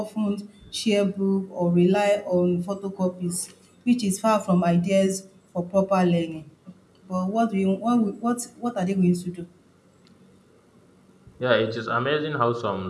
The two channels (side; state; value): both; identical; correlation 1.00